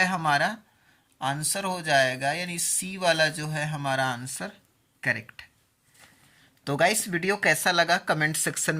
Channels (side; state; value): both; identical; correlation 1.00